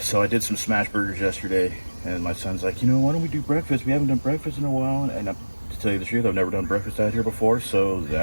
So I did some smash burgers yesterday, and my son's like, why don't we do breakfast? We haven't done breakfast in a while. And to tell you the truth, I've never done breakfast out here before, so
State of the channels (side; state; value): both; inverted; correlation -1.00